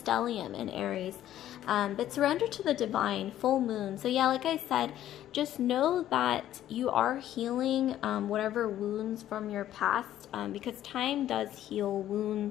in Aries. But surrender to the divine, full moon. So yeah, like I said, just know that you are healing whatever wounds from your past, because time does heal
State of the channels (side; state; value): right; quieter; 12.3 dB